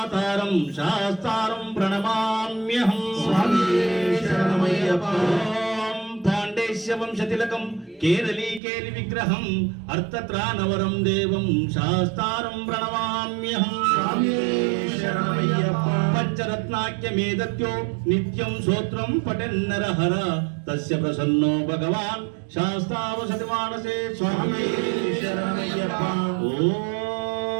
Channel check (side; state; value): left; drops out; at 8.6 s